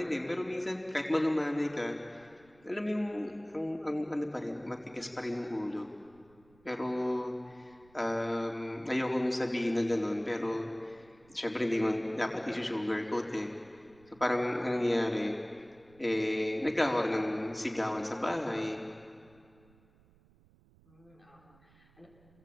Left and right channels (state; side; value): noise; right; rumble, 29 dB below the sound